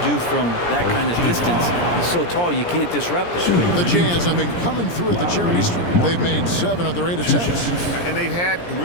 do from that kind of distance. He's so tall, you can't disrupt it. The Jazz have been coming through at the charity stripe. They've made 7 of their 8 attempts. And they've had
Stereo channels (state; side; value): late; right; 17 ms